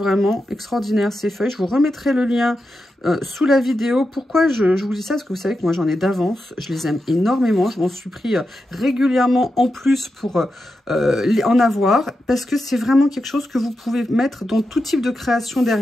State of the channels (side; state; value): both; normal; correlation 0.89